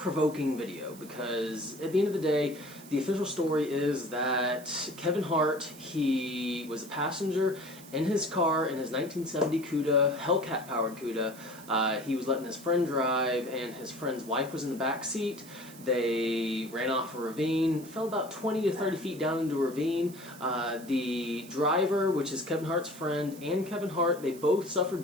video because at the end of the day, the official story is that Kevin Hart, he was a passenger in his car in his 1970 Cuda, Hellcat-powered Cuda. He was letting his friend drive, and his friend's wife was in the back seat. They ran off a ravine, fell about 20 to 30 feet down into a ravine. The driver, which is Kevin Hart's friend, and Kevin Hart, they both suffered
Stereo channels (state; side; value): noise; right; hiss, 19 dB below the sound